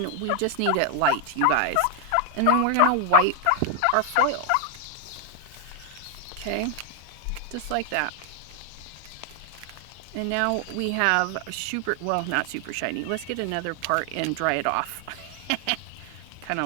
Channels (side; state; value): both; different; correlation 0.00